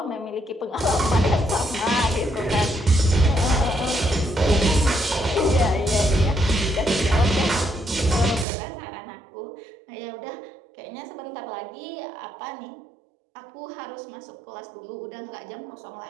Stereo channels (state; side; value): drops out; left; at 8.5 s